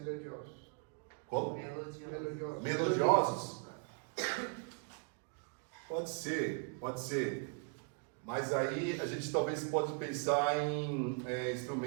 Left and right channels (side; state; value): left; quieter; 37.8 dB